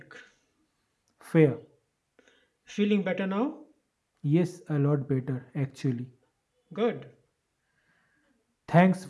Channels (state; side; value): identical; both; correlation 1.00